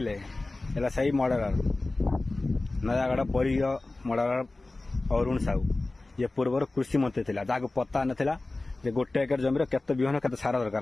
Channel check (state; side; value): quieter; right; 3.1 dB